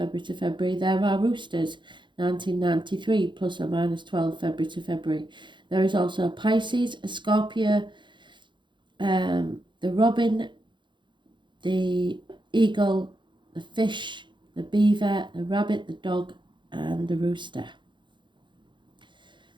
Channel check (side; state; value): left; late; 0.23 ms